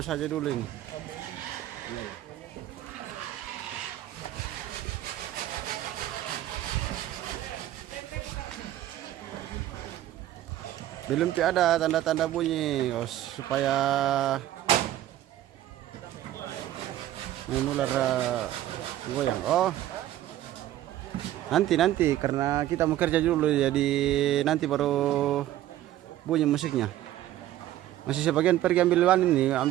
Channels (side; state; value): left; quieter; 13.4 dB